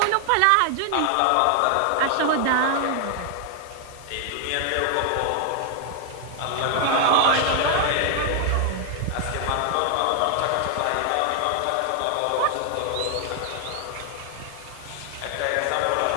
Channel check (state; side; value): different; both; correlation 0.00